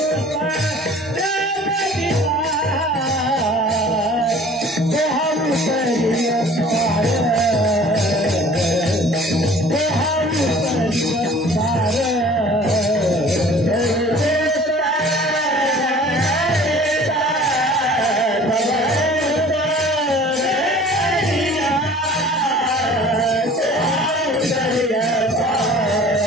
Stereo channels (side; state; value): both; normal; correlation 0.48